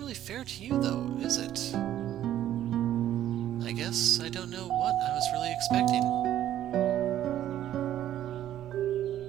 fair to you though, is it? I guess I don't know what I was really expecting.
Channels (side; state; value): left; quieter; 11.9 dB